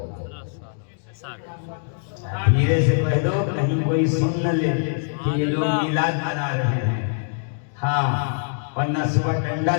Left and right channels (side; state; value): right; silent; digital silence